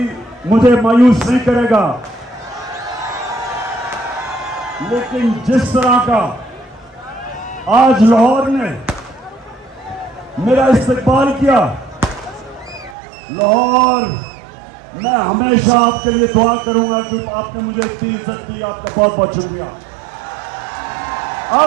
मुझे मायूस नहीं करेगा, लेकिन जिस तरह का आज लाहौर ने मेरा इस्तकबाल किया, लाहौर, मैं हमेशा आपके लिए दुआ करूंगा कि आपने मुझे इतनी इज्जत दी, आपका बहुत बहुत शुक्रिया।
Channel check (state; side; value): drops out; left; at 13.0 s